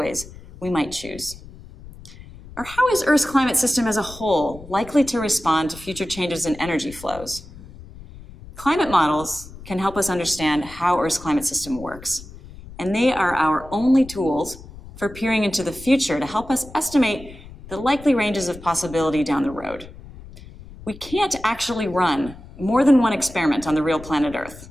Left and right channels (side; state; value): left; noise; rumble, 17 dB below the sound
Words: we might choose? Or how is Earth's climate system as a whole likely to respond to future changes in energy flows? Climate models can help us understand how Earth's climate system works, and they are our only tools for peering into the future to help us estimate the likely ranges of possibility down the road. We can't actually run more than one experiment on the real planet Earth,